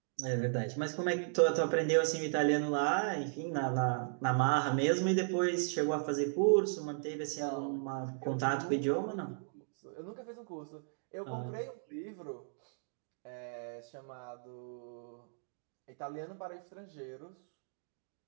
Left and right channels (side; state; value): left; silent; digital silence